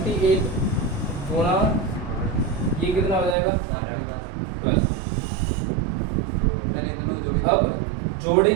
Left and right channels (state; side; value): drops out; left; at 3.4 s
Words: गुणा ये कितना हो जाएगा प्लस। अब